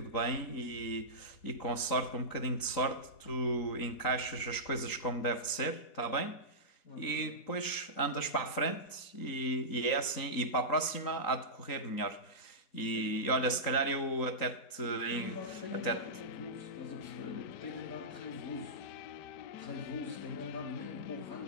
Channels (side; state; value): right; late; 3.9 ms